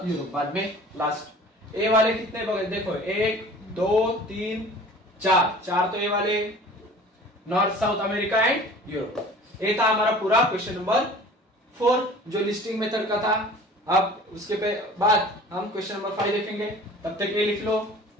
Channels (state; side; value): normal; both; correlation 0.45